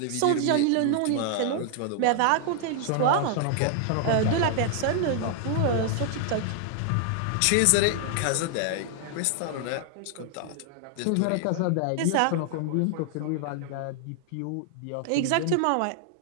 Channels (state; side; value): different; both; correlation 0.00